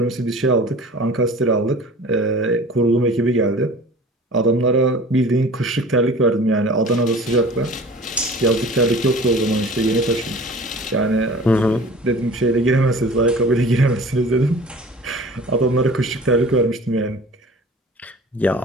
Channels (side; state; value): both; normal; correlation 0.43